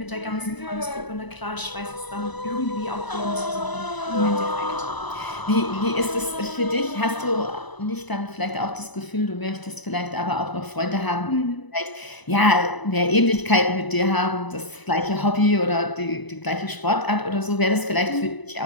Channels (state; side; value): late; right; 1.0 ms